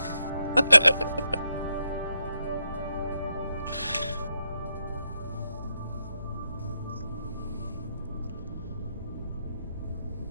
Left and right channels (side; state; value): both; inverted; correlation -0.83